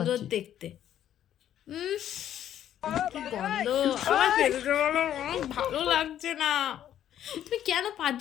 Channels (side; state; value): right; quieter; 10.9 dB